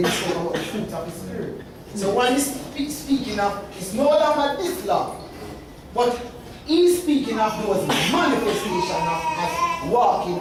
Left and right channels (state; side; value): identical; both; correlation 1.00